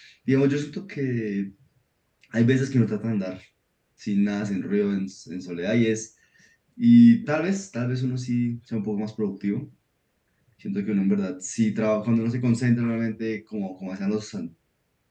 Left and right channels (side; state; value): both; identical; correlation 1.00